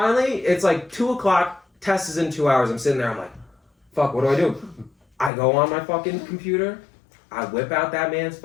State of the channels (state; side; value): drops out; right; at 5.3 s